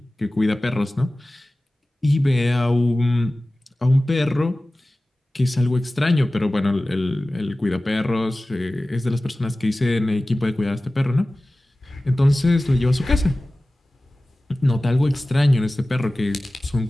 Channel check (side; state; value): both; normal; correlation 0.97